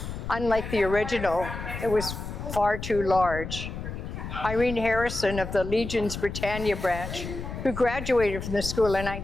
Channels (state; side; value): noise; left; rumble, 7 dB below the sound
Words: Unlike the original, it was far too large. Irene Harrison of the Legion's Britannia branch, who graduated from the school in